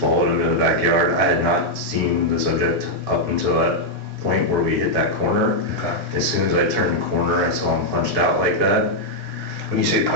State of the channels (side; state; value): both; normal; correlation -0.02